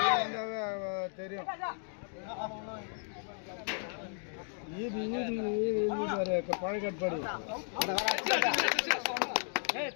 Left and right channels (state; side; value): silent; right; 55 dB below the other